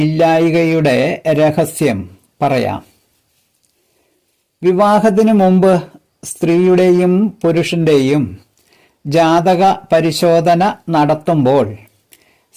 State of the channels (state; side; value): identical; both; correlation 1.00